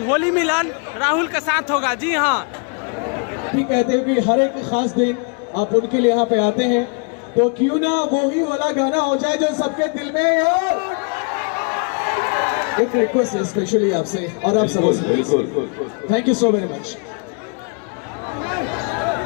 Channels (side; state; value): right; quieter; 39.0 dB